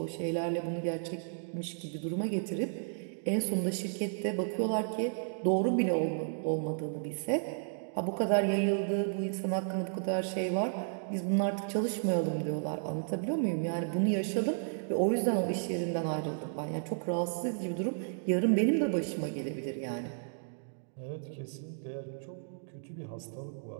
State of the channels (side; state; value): left; silent; digital silence